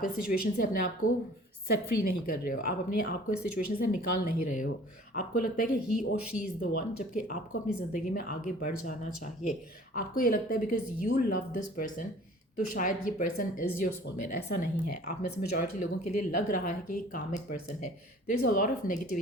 इस सिचुएशन से अपने आप को सेट फ्री नहीं कर रहे हो। आप अपने आप को इस सिचुएशन से निकाल नहीं रहे हो। आपको लगता है कि ही और शी इज़ द वन, जबकि आपको अपनी ज़िंदगी में आगे बढ़ जाना चाहिए। आपको ये लगता है because you love this person, तो शायद ये पर्सन इज़ योर सोलमेट। ऐसा नहीं है। आप में से मेजॉरिटी लोगों के लिए लग रहा है कि ये कामिक पर्सन है। There is a lot of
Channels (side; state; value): both; normal; correlation 0.49